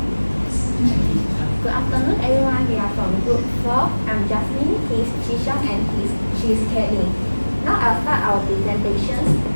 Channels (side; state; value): both; inverted; correlation -1.00